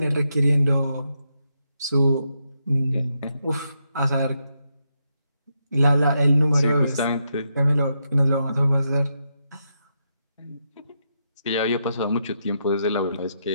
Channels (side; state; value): both; inverted; correlation -0.82